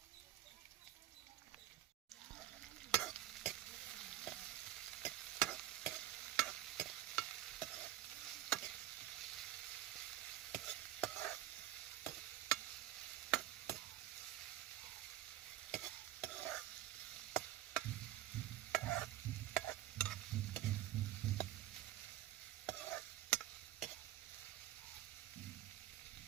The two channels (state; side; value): quieter; left; 14.1 dB